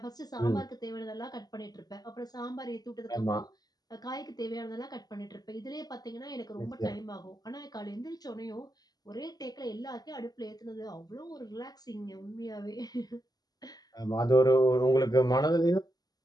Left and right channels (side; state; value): right; late; 0.19 ms